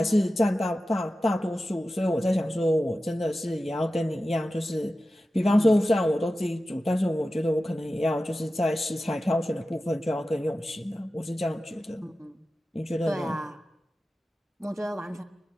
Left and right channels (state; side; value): normal; both; correlation 0.94